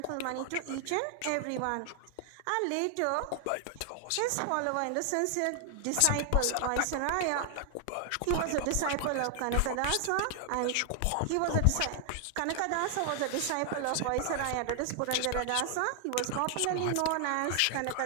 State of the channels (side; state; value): both; different; correlation 0.00